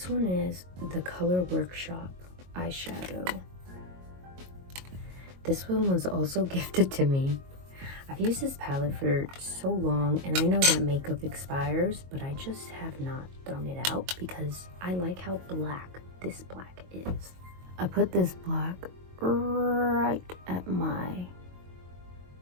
one is the Color Workshop eyeshadow. This one was also gifted to me. I've used this palette for so long, and I know that makeup expires, but I just have not thrown it out because I like how black this black is. I put this black right at my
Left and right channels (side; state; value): left; late; 22 ms